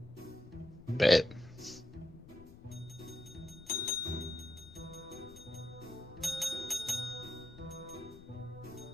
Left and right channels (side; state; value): left; noise; rumble, 18 dB below the sound